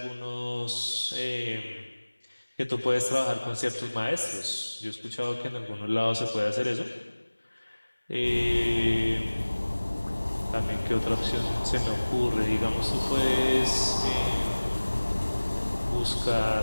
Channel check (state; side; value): inverted; both; correlation -1.00